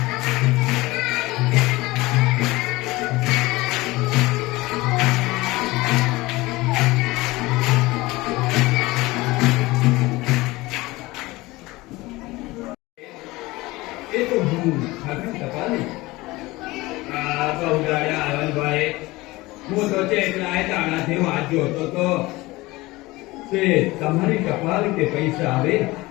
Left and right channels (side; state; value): right; quieter; 20.6 dB